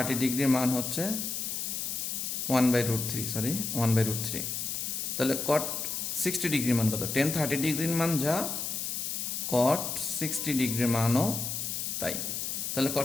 ডিগ্রির মান হচ্ছে 1/√3 তাহলে কট 60 ডিগ্রির মান কত? টেন 30 ডিগ্রির মান যা, কট 60 ডিগ্রির মানও তাই। তাহলে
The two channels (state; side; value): noise; left; hiss, 3 dB below the sound